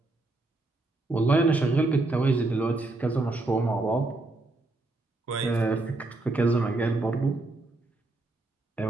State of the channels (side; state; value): left; quieter; 3.0 dB